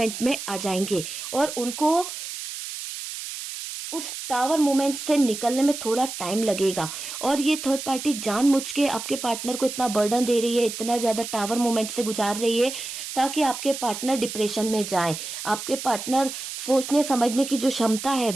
में आ जाएंगे और उनको उस टावर मोमेंट से निकलने में थोड़ा टाइम लगेगा। और ये थर्ड पार्टी जानबूझ के आपके पार्टनर को इतना बर्डन दे रही है, इतना ज्यादा टावर मोमेंट से गुजार रही है, ताकि आपके पार्टनर डिप्रेशन में जाए। आपके पार्टनर सोचने समझने की जो क्षमता है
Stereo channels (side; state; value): right; noise; hiss, 8 dB below the sound